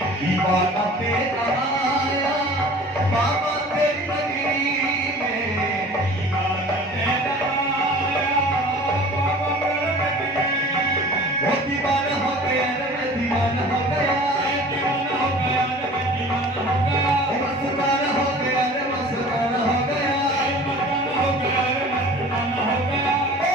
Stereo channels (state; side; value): normal; both; correlation 0.44